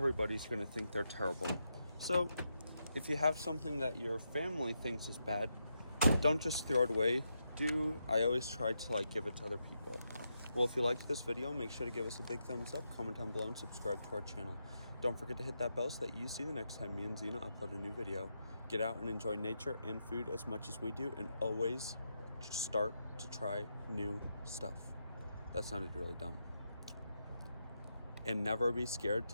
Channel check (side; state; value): both; inverted; correlation -0.84